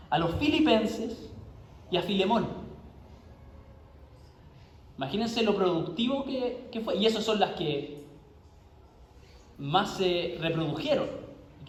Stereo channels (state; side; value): identical; both; correlation 1.00